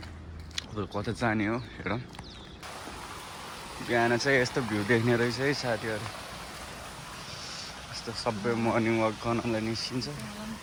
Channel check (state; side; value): identical; both; correlation 1.00